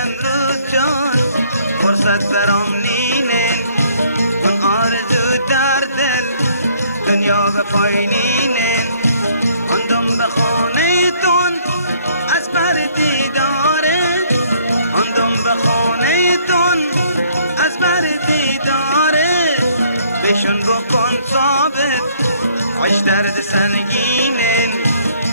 جان فرصت برام نینه من آرزو در دل دنیا به پایینه اندم به خانه تون از بر دیداره اندم به خانه تون از بر دیداره بشون بکن ثابت عش درد سنگینه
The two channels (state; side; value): inverted; both; correlation -0.63